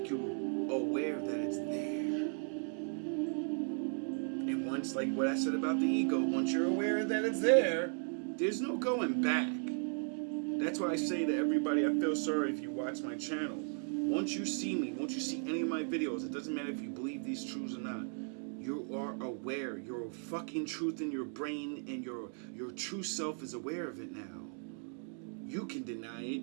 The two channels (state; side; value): silent; left; 54 dB below the other